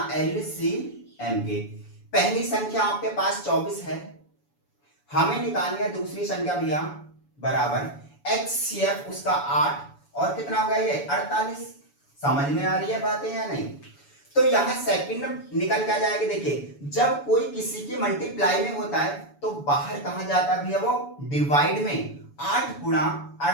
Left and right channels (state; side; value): late; right; 7.0 ms